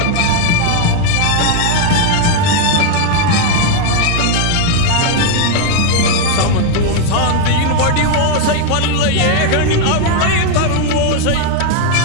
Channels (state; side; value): different; both; correlation 0.01